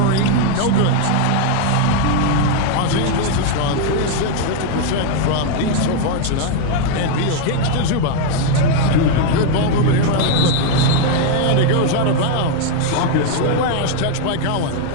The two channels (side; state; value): both; different; correlation 0.00